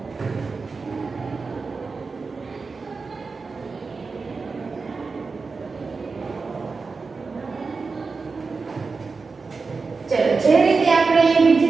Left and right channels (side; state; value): left; quieter; 4.4 dB